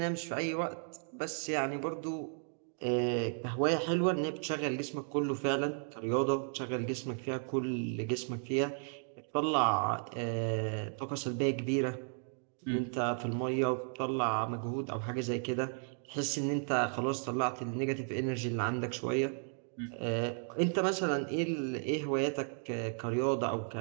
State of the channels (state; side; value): silent; left; 55 dB below the other